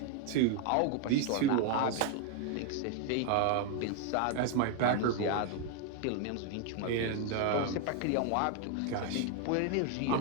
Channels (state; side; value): different; both; correlation 0.01